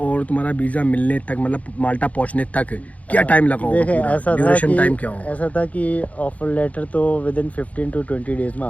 तुम्हारा वीज़ा मिलने तक, मतलब माल्टा पहुंचने तक क्या टाइम लगा होगा? देखे, पूरा ऐसा ड्यूरेशन था टाइम कि क्या होगा? ऐसा था कि ऑफर लेटर तो विद इन 15 to 20 डेज में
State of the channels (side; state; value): right; late; 0.069 ms